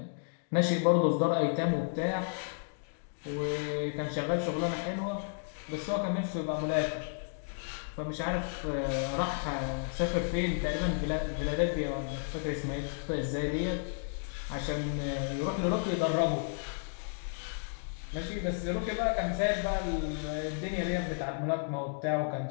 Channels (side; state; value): right; silent; digital silence